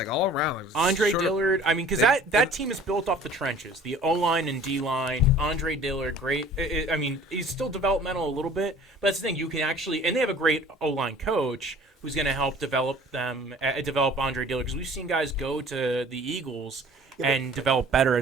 all around. Like, Andre short- Dillard, I mean, because that team is built off the trenches. The O-line and D-line. Andre Dillard, great. I mean, he's still developmental a little bit, but that's the thing. You can actually, and they have a great O-line coach who's going to help develop Andre Dillard. Because we've seen guys go to the Eagles and develop better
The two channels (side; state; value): both; normal; correlation 0.49